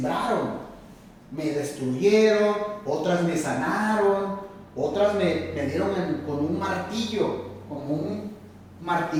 me destruyeron, otras me sanaron, otras me dieron con un martillo, como un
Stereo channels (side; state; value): both; identical; correlation 1.00